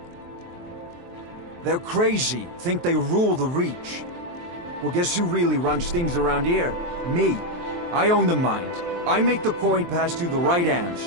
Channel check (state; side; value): late; left; 23 ms